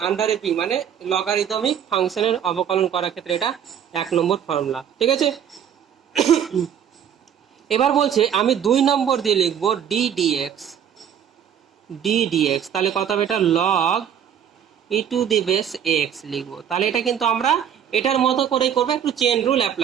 আন্ডারে পি, মানে লগারিদমিক ফাংশনের অবকলন করার ক্ষেত্রে এটা 1 নম্বর ফর্মুলা। ঠিক আছে, এবার বলছে আমি 2 নম্বর দিয়ে লিখবো ডি ডিএক্স, তাহলে কত হবে এটা, log e to the base x লিখবো। তাহলে এটা কিন্তু আমরা এটার মতো করেই করবো, একটু চেন রুল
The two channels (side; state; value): left; quieter; 8.9 dB